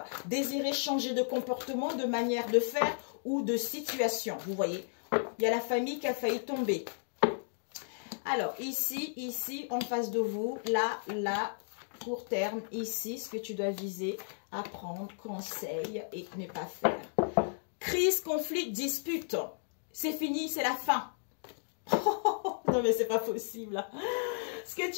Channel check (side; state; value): right; silent; digital silence